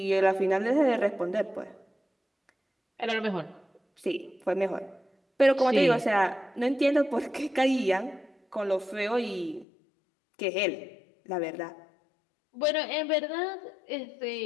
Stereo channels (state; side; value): drops out; right; at 9.7 s